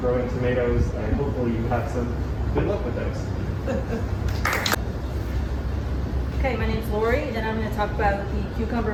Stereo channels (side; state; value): both; identical; correlation 1.00